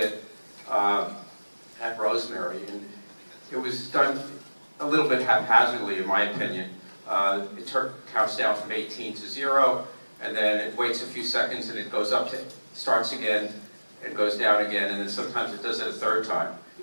at Rosemary, and it was done a little bit haphazardly, in my opinion. It counts down from 18 to 0, and then it waits a few seconds, and it goes up to, starts again, and goes down again, and then sometimes it does it a third time,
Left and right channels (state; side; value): inverted; both; correlation -1.00